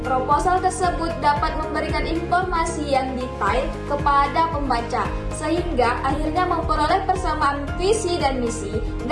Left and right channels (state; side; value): identical; both; correlation 1.00